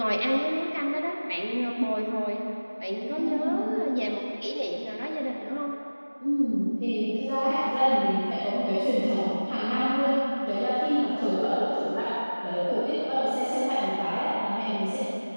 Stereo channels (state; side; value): inverted; both; correlation -1.00